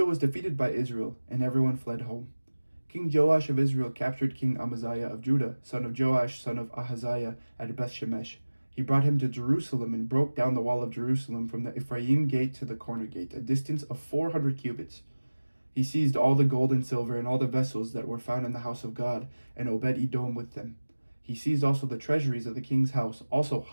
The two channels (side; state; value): both; inverted; correlation -1.00